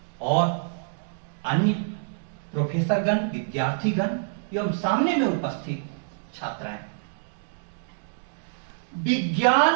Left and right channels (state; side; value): silent; left; digital silence